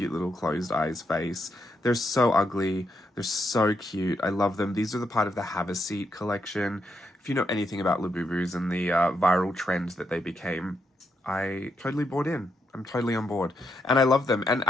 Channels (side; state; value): both; normal; correlation 0.80